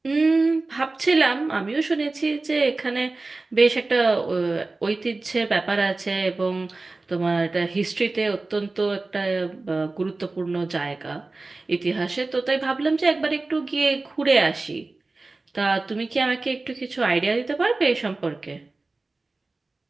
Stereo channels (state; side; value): quieter; left; 3.4 dB